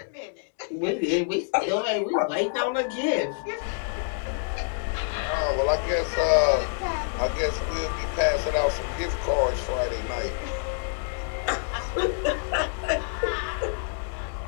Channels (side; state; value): right; silent; digital silence